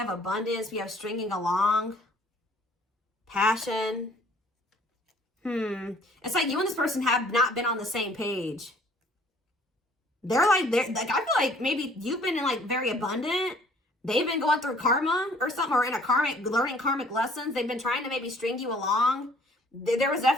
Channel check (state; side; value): normal; both; correlation 0.57